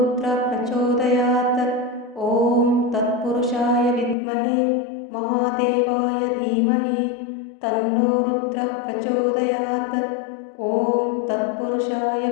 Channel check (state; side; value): drops out; right; at 4.2 s